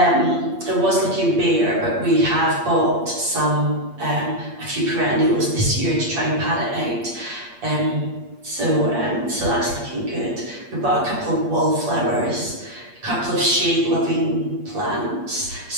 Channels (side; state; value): left; late; 8.5 ms